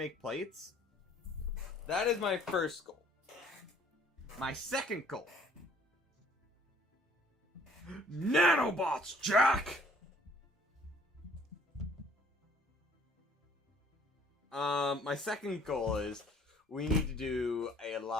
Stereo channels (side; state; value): both; normal; correlation 0.59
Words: plates. That is my first goal. My second goal. Nanobots, Jack! My second goal is we need to do a